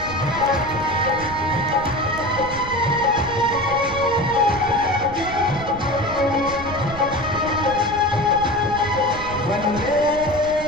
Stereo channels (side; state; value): right; noise; rumble, 12 dB below the sound